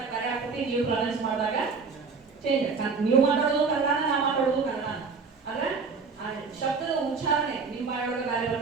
ಬೇರೆ ಆಗ್ತದೆ, ನೀವು ಪ್ರೊನೌನ್ಸ್ ಮಾಡಿದಾಗ ಚೇಂಜ್. ನೀವು ಮಾತಾಡೋದು ಕನ್ನಡ, ನಾ ಮಾತಾಡೋದು ಕನ್ನಡ. ಆದ್ರೆ ಶಬ್ದದ ಉಚ್ಚಾರಣೆ ನಿಮ್ಮ ಬಾಯೊಳಗೆ ಬೇರೆ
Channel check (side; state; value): left; quieter; 4.9 dB